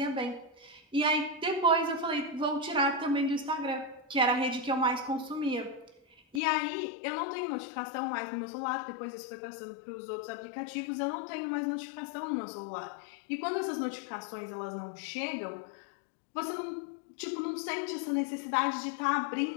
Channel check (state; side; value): drops out; right; at 6.4 s